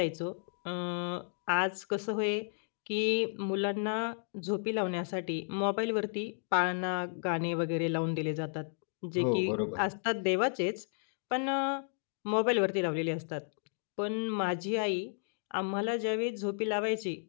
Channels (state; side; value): silent; right; digital silence